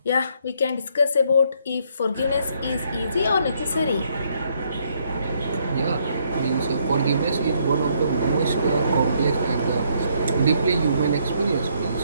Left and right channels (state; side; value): inverted; both; correlation -0.70